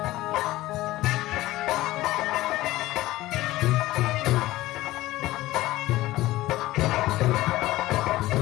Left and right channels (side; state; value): right; quieter; 17.1 dB